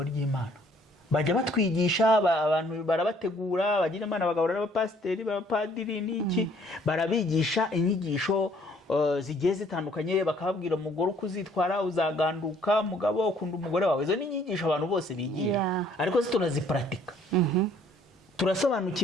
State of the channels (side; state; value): both; normal; correlation 0.61